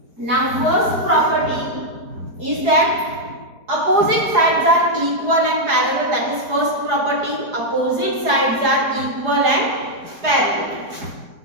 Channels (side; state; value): left; late; 4.8 ms